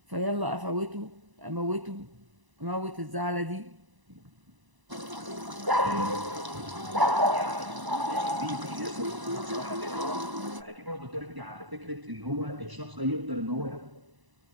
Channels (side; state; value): left; late; 1.0 ms